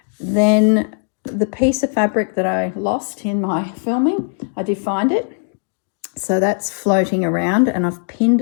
Then the piece of fabric that I lost in my filming, I did find it. So that's floating around, and I've pinned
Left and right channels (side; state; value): right; silent; 59 dB below the other